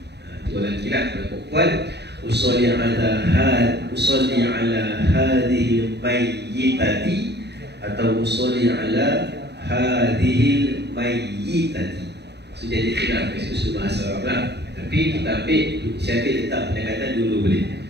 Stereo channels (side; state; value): left; late; 0.49 ms